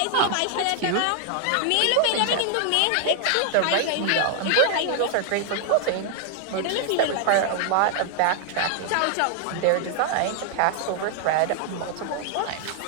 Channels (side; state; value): both; different; correlation 0.00